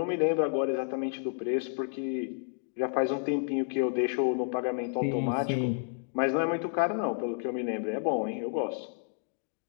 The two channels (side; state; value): right; silent; digital silence